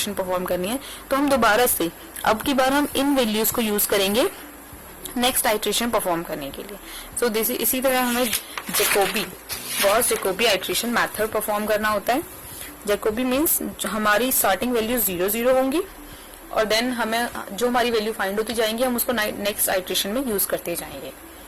परफॉर्म करनी है, तो हम दोबारा से अब की बार हम इन वैल्यूज को यूज करेंगे नेक्स्ट आइट्रेशन परफॉर्म करने के लिए। सो इसी तरह हमें Gauss Jacobi iteration method perform करना होता है। जैकोबी मीन्स हमारी स्टार्टिंग वैल्यू 0 0 होंगी और देन हमें जो हमारी वैल्यू फाइंड होती जाएंगी हम उसको नेक्स्ट आइट्रेशन में यूज करते जाएंगे।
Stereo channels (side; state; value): both; identical; correlation 1.00